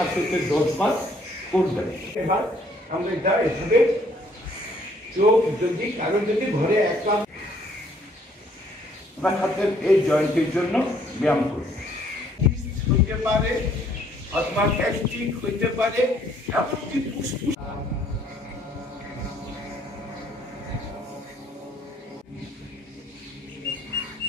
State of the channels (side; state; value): both; normal; correlation 0.64